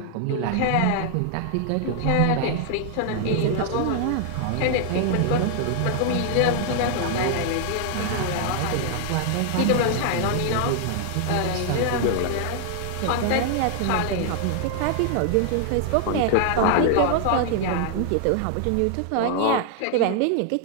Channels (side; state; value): both; different; correlation 0.00